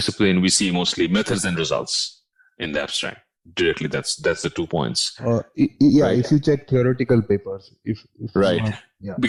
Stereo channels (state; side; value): identical; both; correlation 1.00